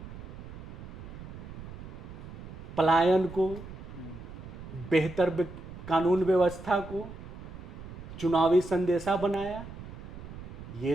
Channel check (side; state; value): right; noise; rumble, 12 dB below the sound